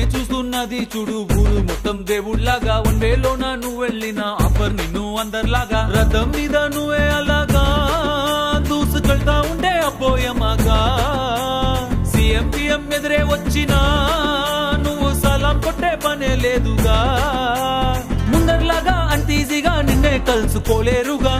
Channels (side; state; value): both; identical; correlation 1.00